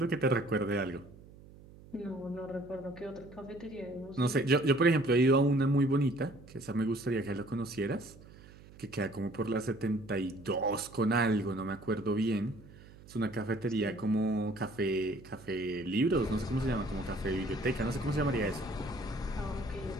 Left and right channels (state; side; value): noise; right; hum, 21 dB below the sound